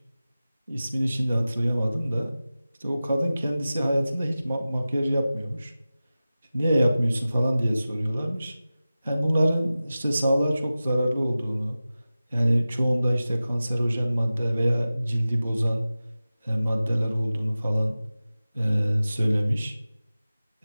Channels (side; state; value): both; inverted; correlation -0.96